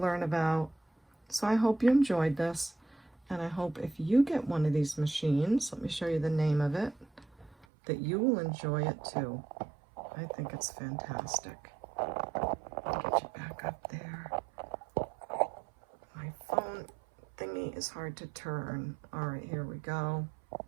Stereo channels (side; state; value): left; drops out; at 7.7 s